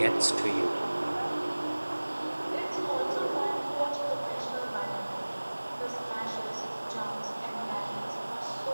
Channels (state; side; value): inverted; both; correlation -1.00